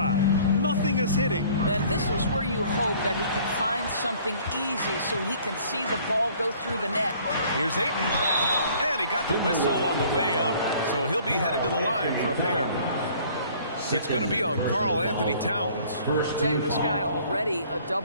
Nothing is hitting. And this is where you hope that he can find something easy so he can see the ball go through the net. Here's Ayton. And he got the whistle on the way up. So he'll be headed to the line for a pair. It's going to be on Karl Anthony Towns. I'll tell you, this guy already a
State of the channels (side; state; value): both; inverted; correlation -0.54